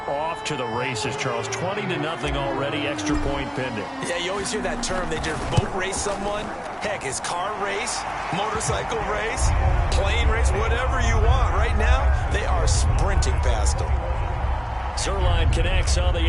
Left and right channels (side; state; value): both; identical; correlation 1.00